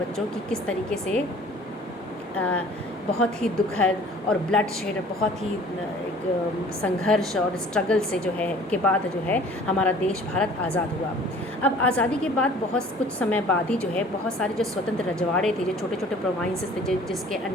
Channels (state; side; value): normal; both; correlation 0.50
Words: कि किस तरीके से बहुत ही दुखद और ब्लड शेड, बहुत ही एक संघर्ष और स्ट्रगल से जो है के बाद जो है हमारा देश भारत आज़ाद हुआ। अब आज़ादी के बाद बहुत कुछ समय बाद ही जो है बहुत सारे जो स्वतंत्र रजवाड़े थे, जो छोटे छोटे प्रोविंसेस थे, जिसके